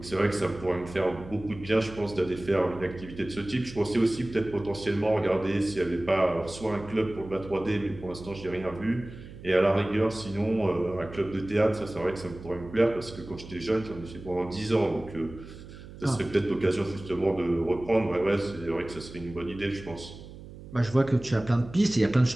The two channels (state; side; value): noise; right; hum, 15 dB below the sound